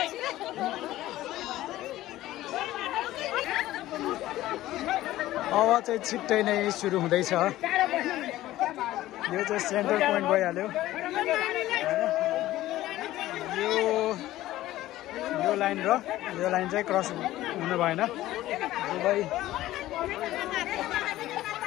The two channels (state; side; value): quieter; right; 15.4 dB